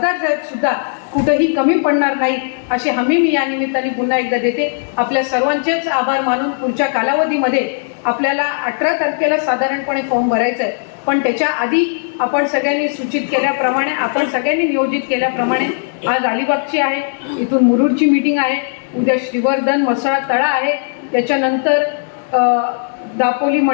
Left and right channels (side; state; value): right; silent; 66 dB below the other